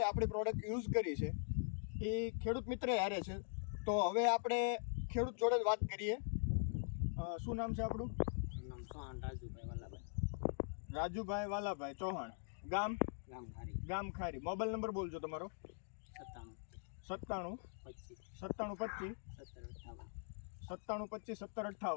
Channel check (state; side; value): silent; right; digital silence